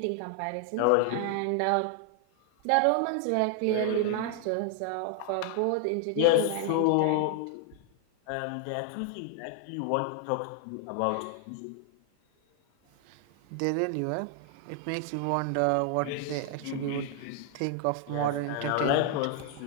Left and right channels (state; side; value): different; both; correlation 0.00